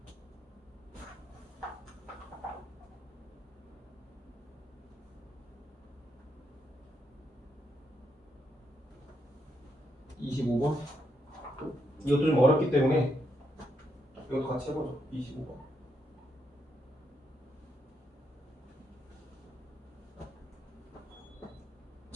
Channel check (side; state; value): both; normal; correlation 0.79